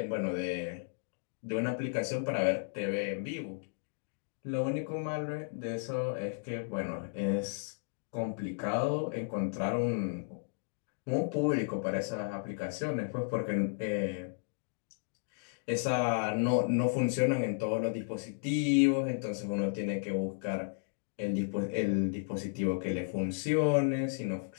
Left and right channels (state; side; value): silent; right; digital silence